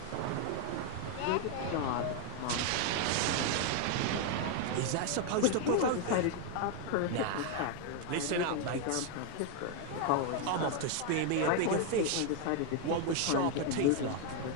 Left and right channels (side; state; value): both; different; correlation 0.01